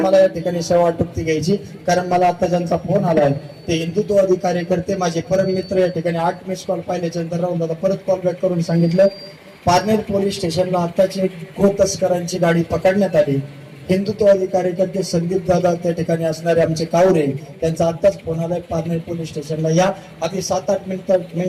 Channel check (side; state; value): both; identical; correlation 1.00